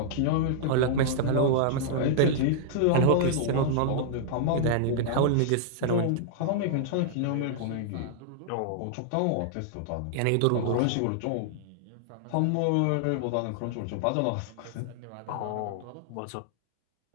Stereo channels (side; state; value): both; different; correlation -0.01